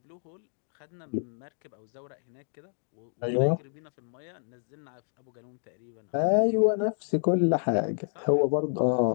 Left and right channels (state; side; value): silent; right; digital silence